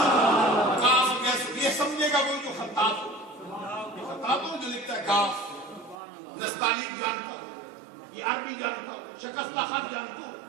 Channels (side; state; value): left; drops out; at 6.0 s